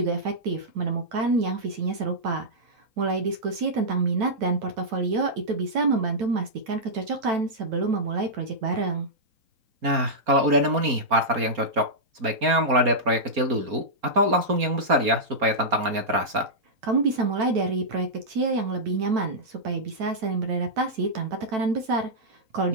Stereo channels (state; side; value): late; left; 4.3 ms